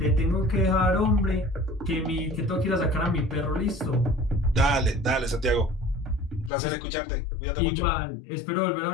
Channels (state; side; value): drops out; right; at 6.5 s